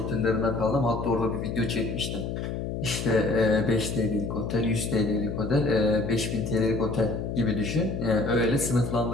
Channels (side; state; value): left; noise; hum, 4 dB below the sound